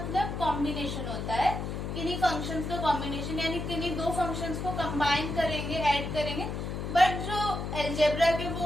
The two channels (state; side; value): noise; left; hum, 4 dB below the sound